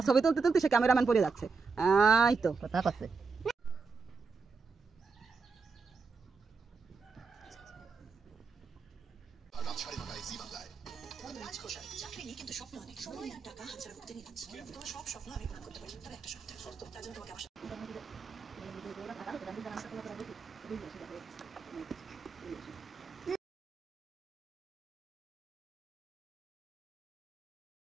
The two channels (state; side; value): quieter; left; 4.8 dB